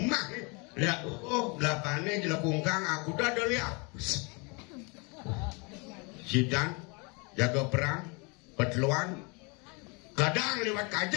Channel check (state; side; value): quieter; right; 30.8 dB